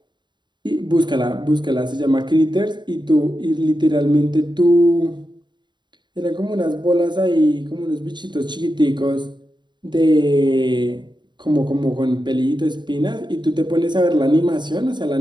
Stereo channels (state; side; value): late; left; 0.22 ms